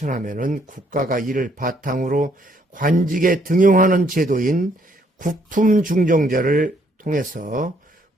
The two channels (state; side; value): normal; both; correlation 0.68